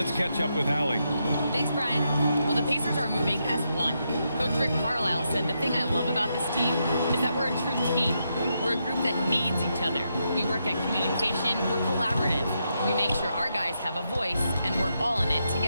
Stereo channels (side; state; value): both; inverted; correlation -0.82